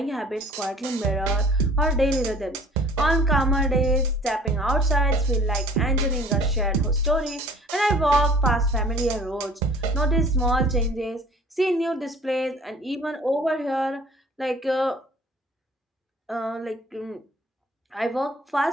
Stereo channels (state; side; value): normal; both; correlation 0.50